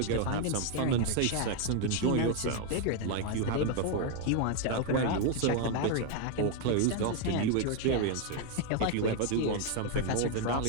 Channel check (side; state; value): both; different; correlation 0.01